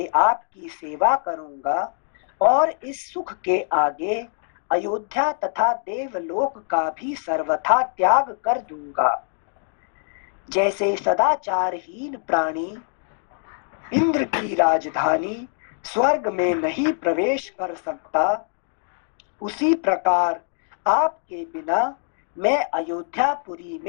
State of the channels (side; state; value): right; silent; 59 dB below the other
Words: आपकी सेवा करूंगा और इस सुख के आगे अयोध्या तथा देवलोक का भी सर्वथा त्याग कर दूंगा। जैसे सदाचारहीन प्राणी इंद्र की राजधानी स्वर्ग में नहीं प्रवेश कर सकता, उसी प्रकार आपके बिना मैं अयोध्यापुरी